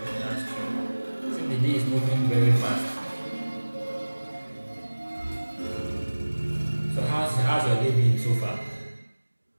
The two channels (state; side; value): inverted; both; correlation -1.00